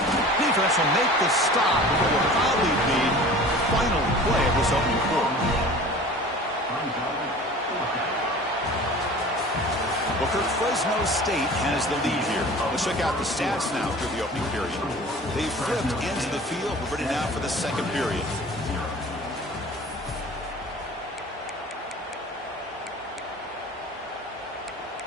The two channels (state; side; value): normal; both; correlation 0.42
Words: Defense will make the stop, but it will probably be the final play of this opening quarter. Booker, Fresno State has the lead here. Let's check out the stats now through the opening period. They flipped into the field. We're ready now for the second period.